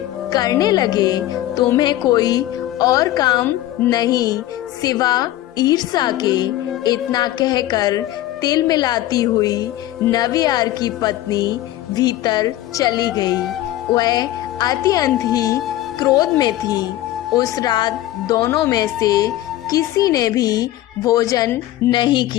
करने लगे। तुम्हें कोई और काम नहीं सिवा ईर्ष्या के। इतना कहकर तिल मिलाती हुई नवियार की पत्नी भीतर चली गई। वह अत्यंत ही क्रोध में थी। उस रात दोनों में से किसी ने भी भोजन नहीं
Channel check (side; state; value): right; quieter; 14.7 dB